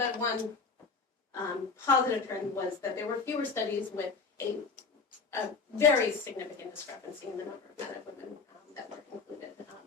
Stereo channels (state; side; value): quieter; right; 4.6 dB